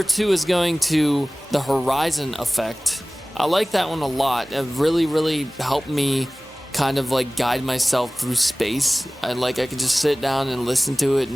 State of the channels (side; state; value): both; normal; correlation 0.98